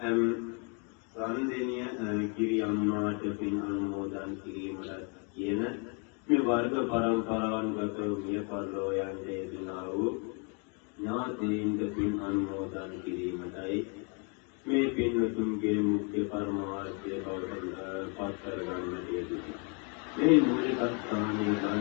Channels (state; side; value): quieter; right; 35.7 dB